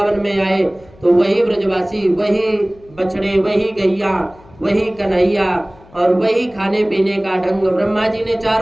में आए तो वही ब्रजवासी, वही बछड़े, वही गैया, वही कन्हैया और वही खाने पीने का ढंग। ब्रह्मा जी ने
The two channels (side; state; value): left; noise; hum, 26 dB below the sound